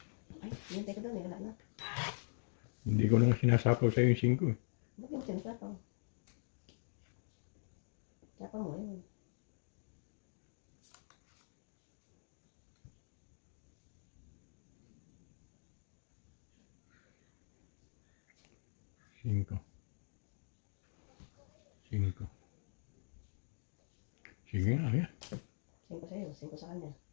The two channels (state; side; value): silent; right; digital silence